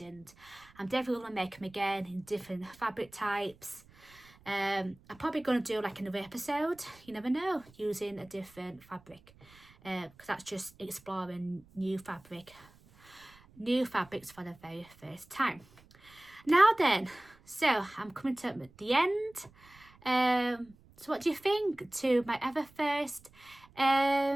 I'm definitely going to make them again in different fabric types. I'm probably going to do like another episode, you never know, using a different fabric, because that's just exploring new fabrics for the very first time. Now then, so I'm coming to the end. So what do you think to my ever first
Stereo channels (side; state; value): right; noise; rumble, 26 dB below the sound